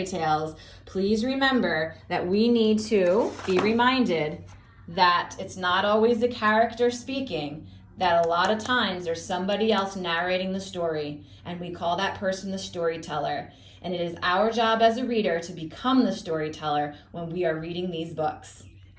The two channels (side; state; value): both; identical; correlation 1.00